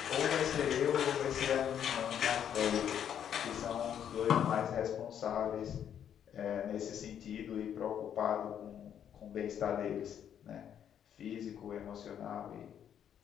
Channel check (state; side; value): quieter; right; 9.2 dB